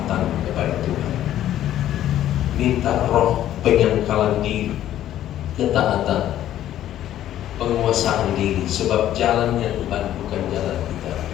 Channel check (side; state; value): right; quieter; 12.2 dB